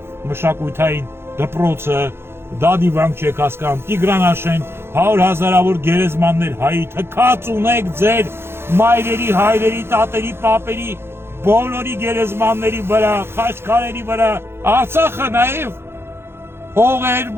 մշակութային դպրոցը, դա դիվանք չեք հասկանում, Տիգրանաշեն, 100,000-ավոր գերեզմաններ հայի, թքած ունեք ձեր մայրերի, հայրերի, տատերի, պապերի, բոլորի գերեզմանների վրա, խաչքարերի վրա, Արցախը նաև հողեր,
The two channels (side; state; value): left; late; 0.12 ms